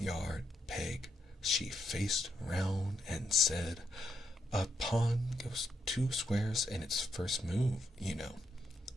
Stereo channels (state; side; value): normal; both; correlation 0.80